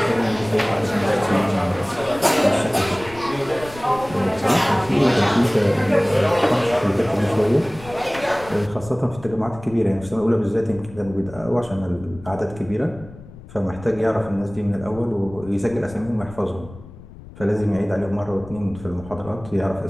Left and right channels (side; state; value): left; noise; rumble, 17 dB below the sound